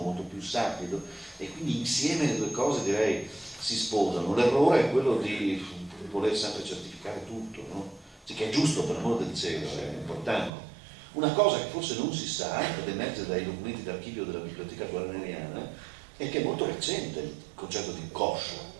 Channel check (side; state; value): left; drops out; at 10.5 s